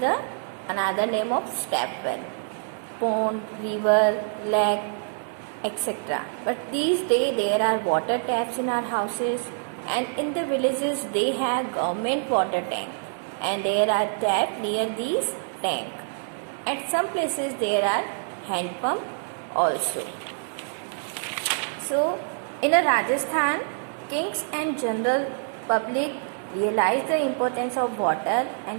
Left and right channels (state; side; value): silent; left; 59 dB below the other